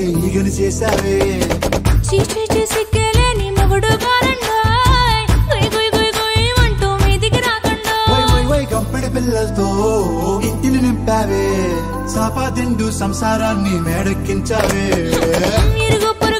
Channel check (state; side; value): identical; both; correlation 1.00